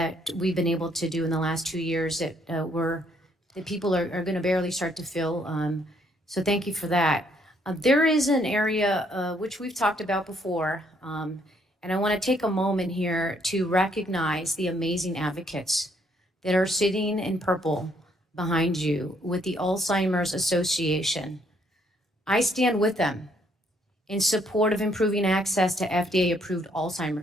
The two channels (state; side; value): normal; both; correlation 0.68